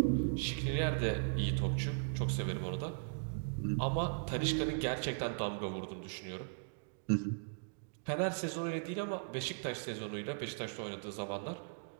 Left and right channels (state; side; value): silent; left; digital silence